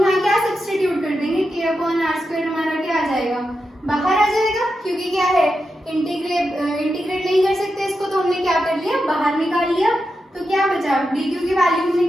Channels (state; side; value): normal; both; correlation 0.88